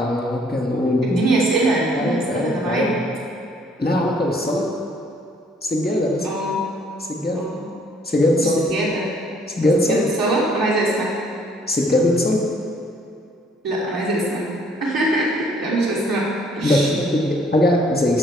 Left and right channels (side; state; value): both; normal; correlation 0.63